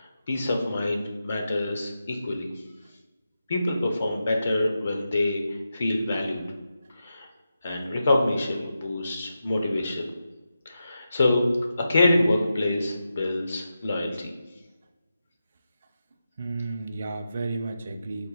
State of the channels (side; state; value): both; inverted; correlation -0.89